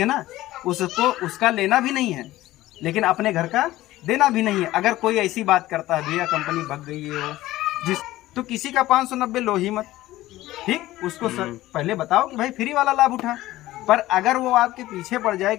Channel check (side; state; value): right; quieter; 16.2 dB